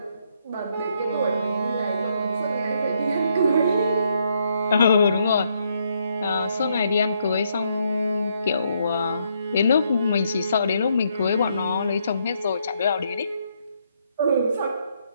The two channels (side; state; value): both; inverted; correlation -0.74